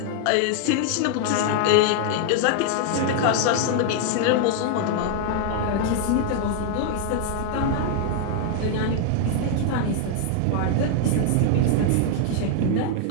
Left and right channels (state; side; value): different; both; correlation 0.00